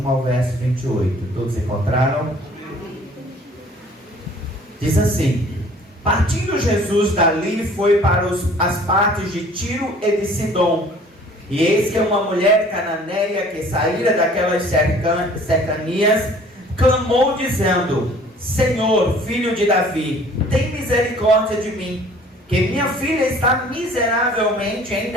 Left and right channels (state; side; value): normal; both; correlation 0.52